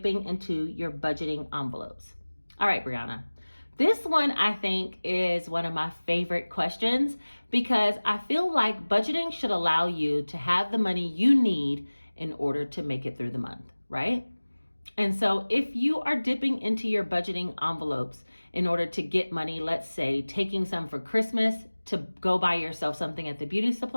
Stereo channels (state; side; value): inverted; both; correlation -1.00